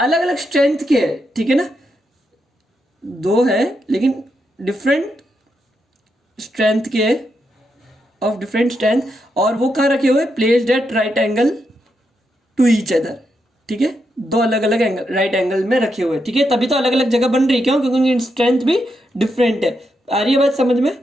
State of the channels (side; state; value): both; normal; correlation 0.83